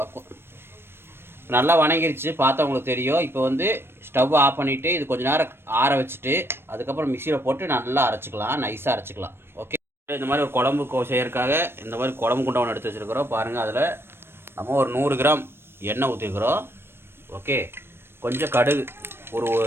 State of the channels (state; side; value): late; left; 0.11 ms